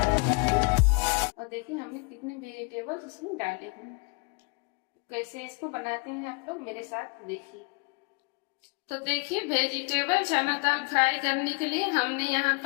सकते हैं। और देखिए हमने कितने वेजिटेबल इसमें डाले हैं। कैसे इसको बनाते हैं आप लोग मेरे साथ देखिए। तो देखिए, वेजिटेबल चना दाल फ्राई करने के लिए हमने यहाँ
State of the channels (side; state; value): right; quieter; 33.4 dB